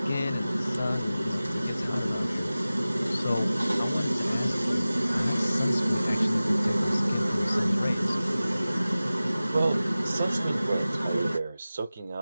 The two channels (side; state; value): both; inverted; correlation -0.96